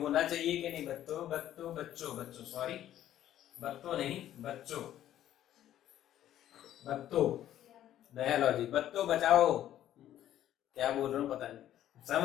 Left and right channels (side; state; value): right; quieter; 12.0 dB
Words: चाहिए कि नहीं? बच्चों सॉरी, बत्तों नहीं, बच्चों नया लॉजिक, बच्चों बचाओ, क्या बोल रहा हूँ पता नहीं,